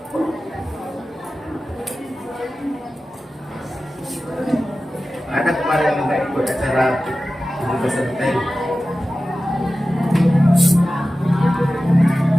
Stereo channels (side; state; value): both; normal; correlation 0.95